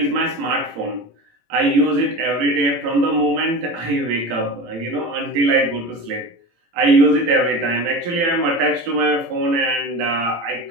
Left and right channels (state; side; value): late; left; 18 ms